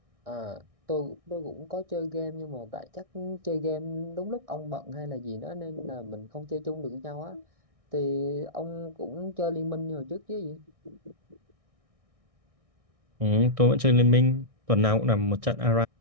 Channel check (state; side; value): late; left; 1.6 ms